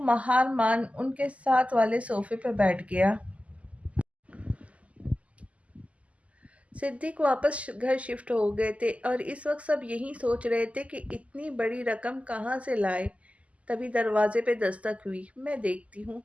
مہار مان ان کے ساتھ والے صوفے پہ بیٹھ گیا۔ صدیق واپس گھر شفٹ ہو گئے تھے اور اس وقت سب یہی سوچ رہے تھے کہ اتنی بڑی رقم کہاں سے لائے۔ تبھی دروازے پہ دستک ہوئی۔ میں دیکھتی ہوں۔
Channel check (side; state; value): left; late; 0.066 ms